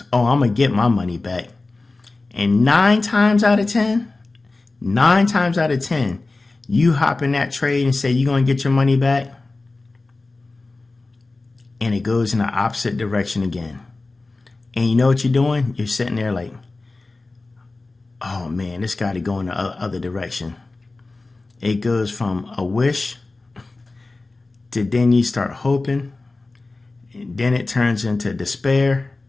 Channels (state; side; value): quieter; right; 3.3 dB